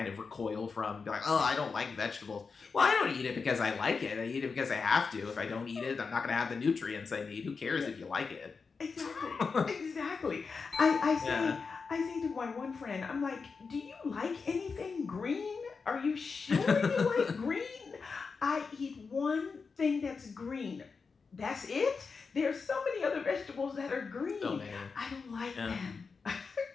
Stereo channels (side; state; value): right; quieter; 5.0 dB